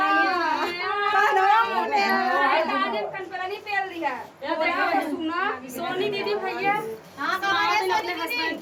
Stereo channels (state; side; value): identical; both; correlation 1.00